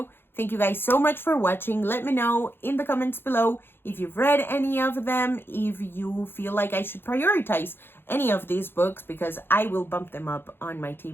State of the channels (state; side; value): late; right; 0.10 ms